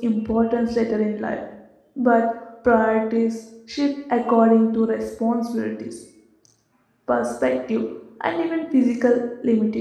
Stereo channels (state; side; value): identical; both; correlation 1.00